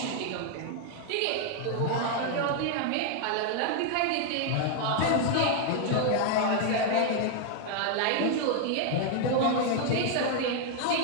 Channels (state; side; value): different; both; correlation 0.00